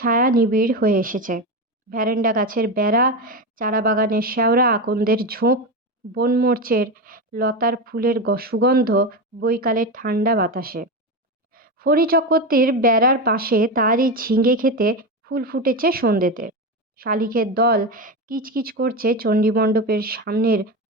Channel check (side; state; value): both; normal; correlation 0.18